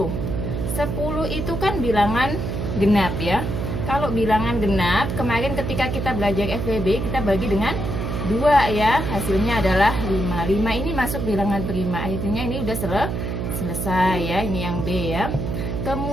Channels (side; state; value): right; noise; hum, 3 dB below the sound